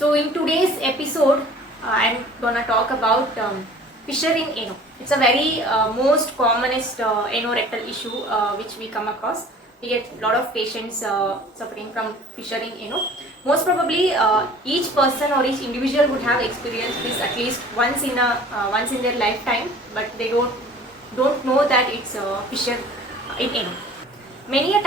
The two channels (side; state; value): both; normal; correlation 0.47